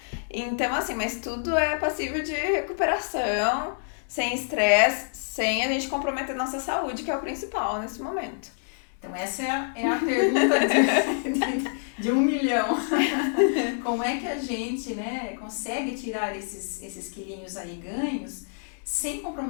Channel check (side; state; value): right; silent; 60 dB below the other